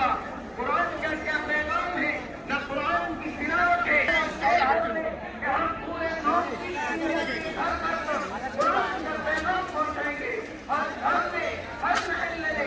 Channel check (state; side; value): identical; both; correlation 1.00